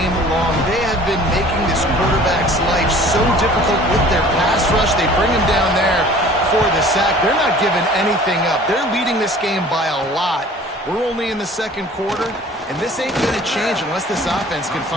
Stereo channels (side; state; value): both; normal; correlation 0.48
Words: long. They have been making this quarterback's life so difficult with their pass rush. They bring him down there for the sack. They're not giving anything up. They're leading this game by a lot. We're only in the second quarter, and this ain't going to change unless this offense can